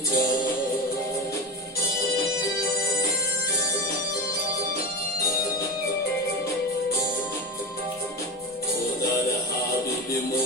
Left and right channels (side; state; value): both; normal; correlation 0.22